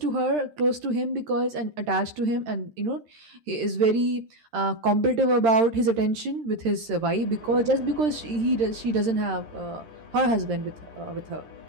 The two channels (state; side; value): late; left; 13 ms